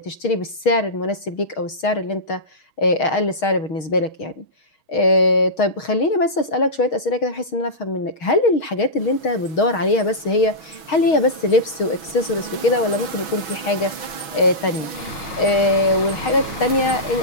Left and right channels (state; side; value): late; right; 6.1 ms